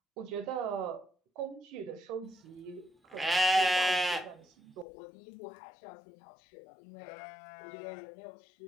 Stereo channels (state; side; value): drops out; right; at 4.9 s